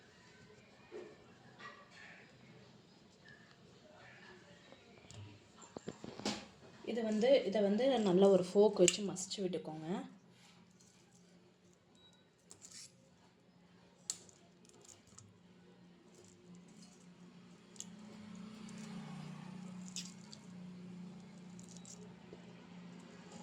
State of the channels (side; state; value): both; identical; correlation 1.00